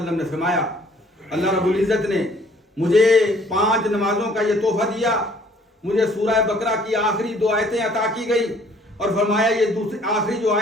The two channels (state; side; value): normal; both; correlation 0.59